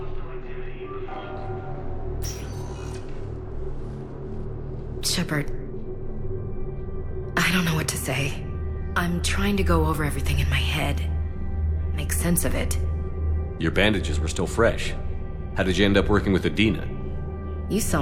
Shepard, I don't know what to say. I'm trying to go over everything in my head. Make sense of it. Your bandages were still fresh. How did you end up working with Adina? You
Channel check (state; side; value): identical; both; correlation 1.00